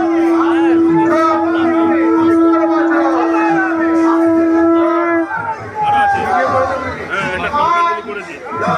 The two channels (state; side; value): identical; both; correlation 1.00